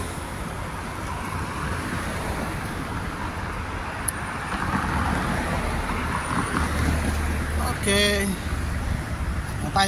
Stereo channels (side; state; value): both; identical; correlation 1.00